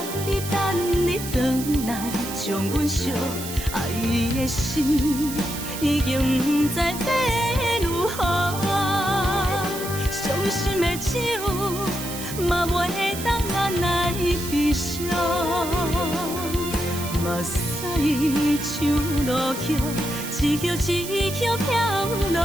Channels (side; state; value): right; noise; hiss, 9 dB below the sound